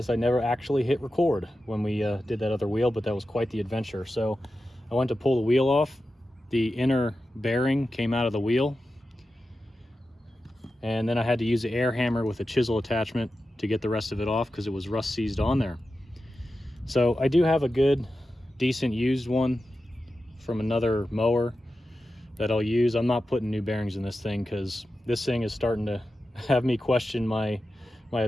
I never actually hit record when we did that other wheel, but that was quite the adventure. So I went to pull the wheel off. The inner bearing came out of the wheel, and then I had to use the air hammer with a chisel attachment to get the rest of it off because it was rust seized on there. So I do have a good, decent used one from another mower that I'll use. I'm not putting new bearings in this thing because this thing is starting to have me question my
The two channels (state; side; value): normal; both; correlation 0.92